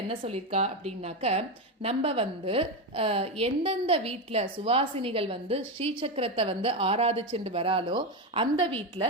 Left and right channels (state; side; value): normal; both; correlation 0.12